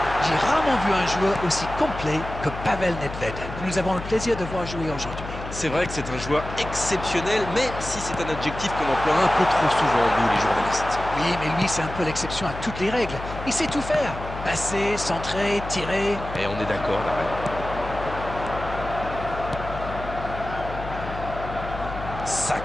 J'ai rarement vu un joueur aussi complet que Pavel Nedved. Nous avons le plaisir de voir jouer aujourd'hui. C'est vrai que c'est un joueur exceptionnel, même si c'est un adjectif qu'on emploie un peu trop souvent, nous les journalistes. Oui, mais lui, c'est un peu l'exception à toutes les règles. Il sait tout faire. Passer, centrer, tirer. Et on est d'accord, Darren.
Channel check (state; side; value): noise; left; hum, 10 dB below the sound